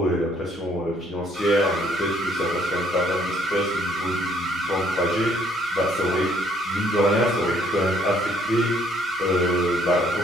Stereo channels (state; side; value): noise; left; rumble, 30 dB below the sound